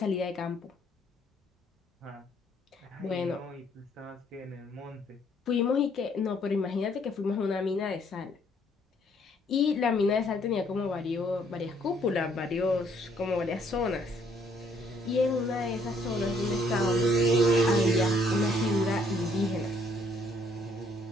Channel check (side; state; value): both; normal; correlation 0.66